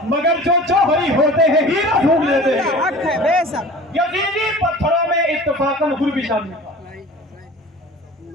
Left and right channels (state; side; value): normal; both; correlation 0.41